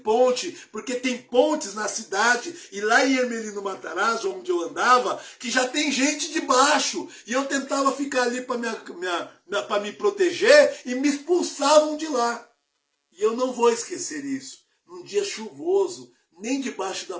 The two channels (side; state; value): both; identical; correlation 1.00